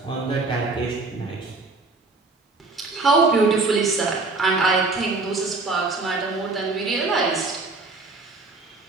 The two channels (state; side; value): quieter; left; 3.5 dB